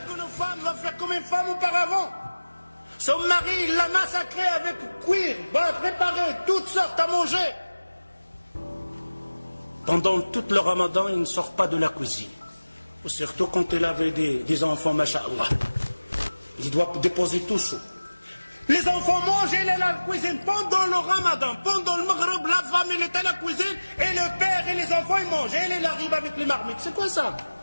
femme va faire comme une femme auparavant. Son mari, il l'a massacré avec cuir, préparé, toutes sortes à manger. Pendant tout le ramadan, il ne sort pas de la cuisine. Surtout quand il avait des enfants, masha'Allah. Il doit déposer tout chaud. Les enfants mangent, il est à la cuisine. Pendant le ramadan, pendant le maghreb, la femme, elle est à la cuisine, et le père et les enfants, ils mangent. Et il arrive avec les marmites. C'est quoi ça?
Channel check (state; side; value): inverted; both; correlation -1.00